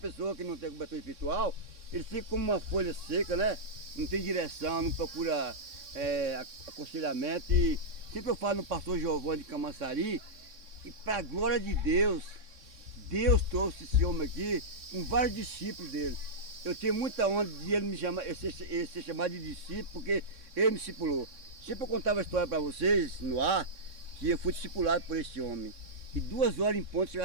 que não tem cobertura espiritual, ele fica como uma folha seca, né? Não tem direção, não procura aconselhamento. E sempre eu falo no pastor Giovanni de Camaçari, e para a glória de Deus, Deus trouxe esse homem aqui com vários discípulos dele. Eu tenho muita honra de ele me chamar, ele ser chamado de discípulo, porque ele me discipulou. Sempre eu contava a história para vocês no ar, que eu fui discipulado por esse homem. E 2 horas em ponto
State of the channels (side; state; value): left; late; 3.6 ms